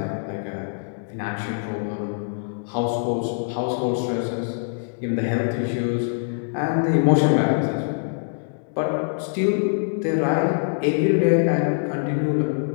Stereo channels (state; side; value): silent; right; digital silence